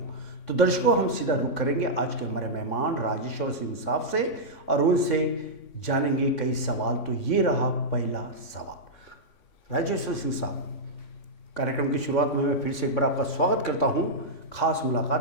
तो दर्शकों, हम सीधा रुख करेंगे आज के हमारे मेहमान राजेश्वर सिंह साहब से और उनसे जानेंगे कई सवाल। तो ये रहा पहला सवाल। राजेश्वर सिंह साहब, कार्यक्रम की शुरुआत में मैं फिर से एक बार आपका स्वागत करता हूं खास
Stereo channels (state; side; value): late; right; 3.6 ms